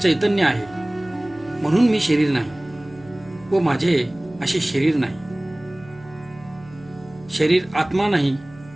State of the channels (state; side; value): noise; right; hum, 22 dB below the sound